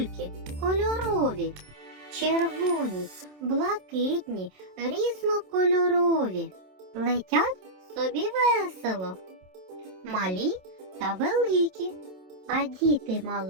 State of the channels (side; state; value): left; late; 27 ms